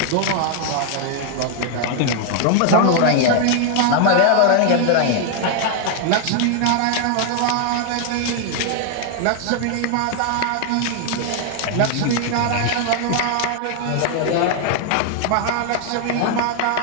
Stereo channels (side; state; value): both; different; correlation 0.00